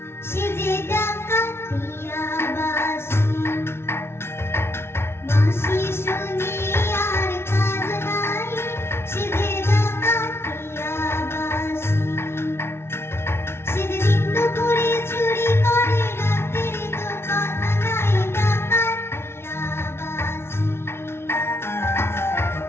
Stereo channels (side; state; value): right; late; 0.12 ms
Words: সে যে ডাকাতিয়া বাঁশি। বাঁশি শুনে আর কাজ নাই, সে যে ডাকাতিয়া বাঁশি। সে যে দিন দুপুরে চুরি করে, রাতের তো কথা নাই, ডাকাতিয়া বাঁশি।